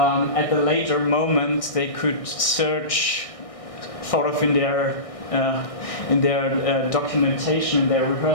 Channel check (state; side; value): late; right; 1.6 ms